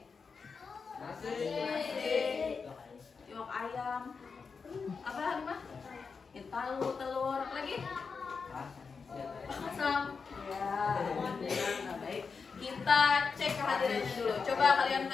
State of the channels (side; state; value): right; quieter; 5.2 dB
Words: Nasi. Iwak ayam. Apa Halimah? Tahu, telur, apa lagi? Asam. Ya, alhamdulillah. Nah, baik. Kita cek kehadirannya dulu. Coba kalian